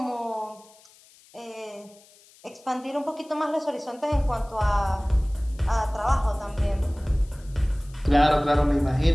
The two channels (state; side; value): noise; left; hiss, 27 dB below the sound